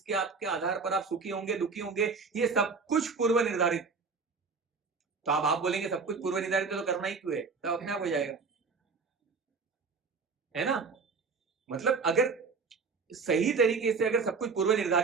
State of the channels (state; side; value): quieter; left; 4.8 dB